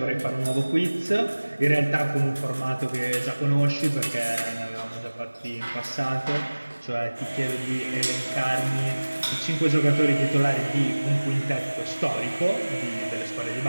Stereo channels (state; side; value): inverted; both; correlation -1.00